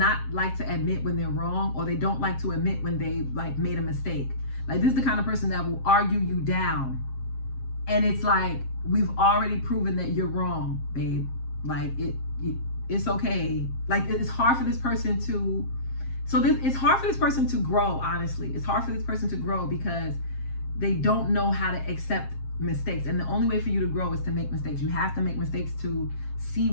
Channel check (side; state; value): right; late; 7.5 ms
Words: like to admit when they're wrong, or they don't like to admit when they like made a mistake. Like this is the kind of person that will argue you down. And it's like, we've already proven that you're wrong, babe. Like it's okay. Like it's hard for this person to, it's hard for this person to grow, honestly. It's hard for this person to grow because they don't know how to accept mistakes. And the only way for you to grow is to make mistakes. You have to make mistakes to see